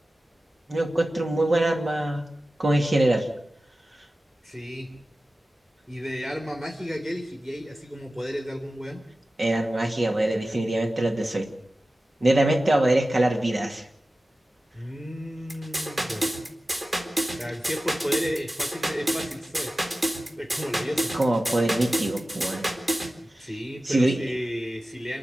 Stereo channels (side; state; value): both; normal; correlation 0.95